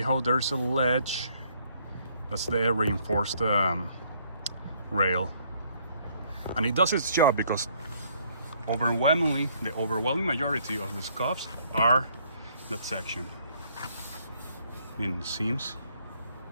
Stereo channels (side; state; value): both; inverted; correlation -0.65